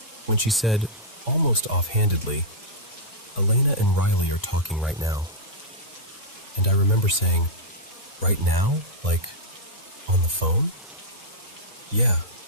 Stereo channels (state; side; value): normal; both; correlation -0.08